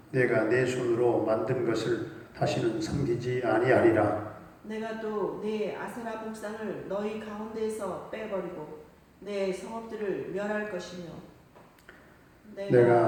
내가 내 손으로 만든 것을 다시는 섬기지 아니하리라. 내가 또 내 아세라 목상을 너희 가운데에서 빼버리고 내 성읍들을 멸할 것이며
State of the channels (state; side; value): identical; both; correlation 1.00